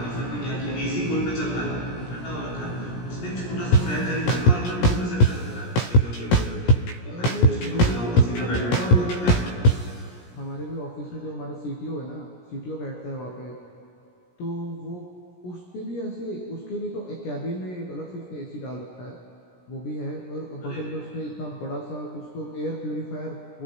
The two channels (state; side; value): late; right; 17 ms